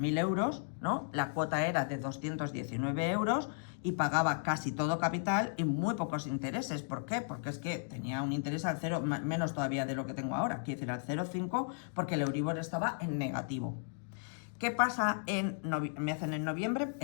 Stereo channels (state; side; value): silent; right; digital silence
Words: euros, ¿no? La cuota era de 219 euros y pagaba casi todo capital y muy pocos intereses. ¿Por qué? Porque es que tenía un interés al cero, menos todavía de lo que tengo ahora, quiero decir al 0,5, porque el Euribor estaba en negativo. ¿Qué pasa me hacen en noviembre?